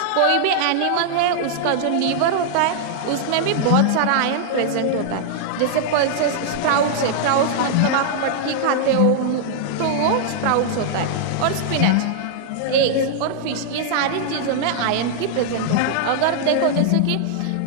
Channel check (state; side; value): different; both; correlation -0.01